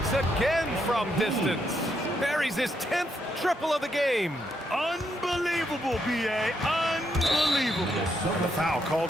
again from distance. Buries his 10th triple of the game. Unbelievable, B.A. Unbelievable. And the foul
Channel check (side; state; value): both; normal; correlation 0.78